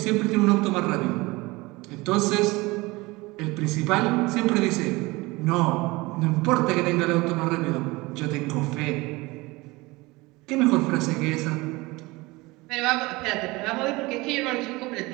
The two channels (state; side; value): quieter; left; 22.5 dB